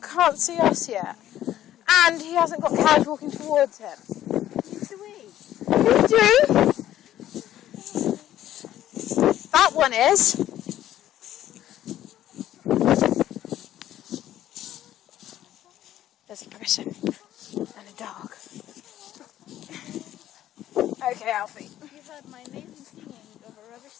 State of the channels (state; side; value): quieter; right; 12.6 dB